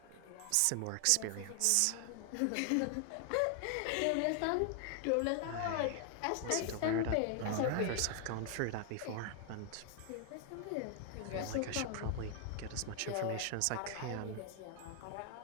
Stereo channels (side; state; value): both; different; correlation 0.00